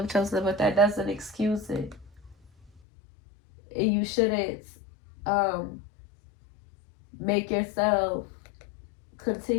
chosen, but that doesn't excuse it. And you shouldn't make yourself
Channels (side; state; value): right; drops out; at 2.7 s